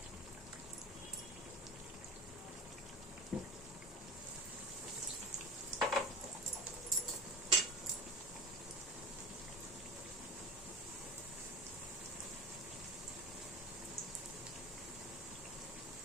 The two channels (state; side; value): normal; both; correlation 0.31